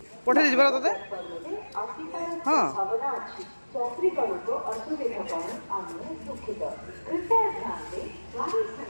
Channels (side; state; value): both; inverted; correlation -1.00